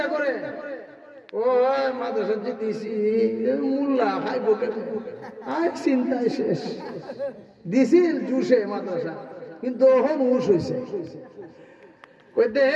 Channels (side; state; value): both; identical; correlation 1.00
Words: করে ও মাদ্রাসা দিছি মুল্লা খাইব কেন, আজ চিন্তায় শেষ। দিছিল জুসে মাদ্রাসা, কিন্তু ওহন হুশ হয়েছে।